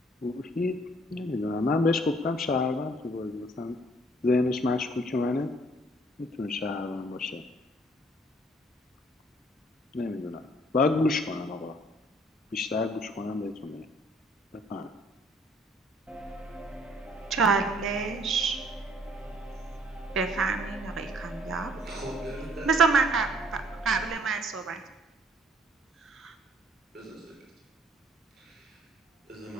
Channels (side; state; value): both; normal; correlation 0.61